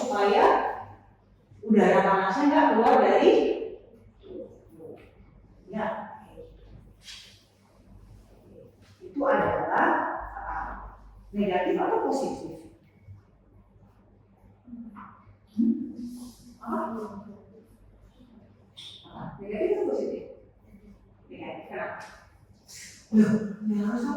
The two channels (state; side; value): identical; both; correlation 1.00